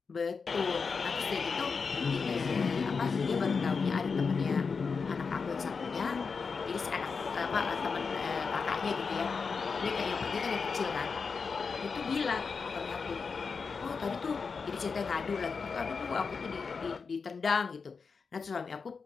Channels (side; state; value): right; quieter; 5.1 dB